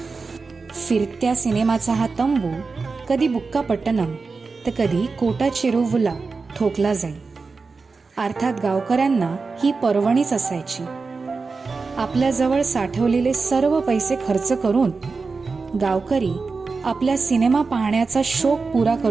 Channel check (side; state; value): left; quieter; 4.4 dB